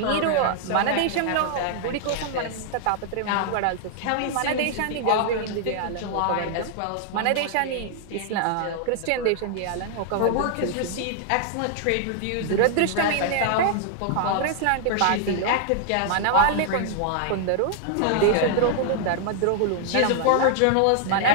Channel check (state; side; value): different; both; correlation -0.01